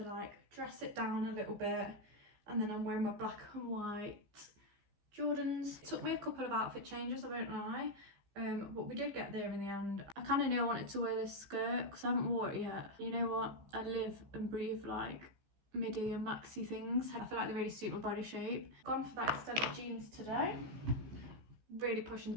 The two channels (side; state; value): left; late; 15 ms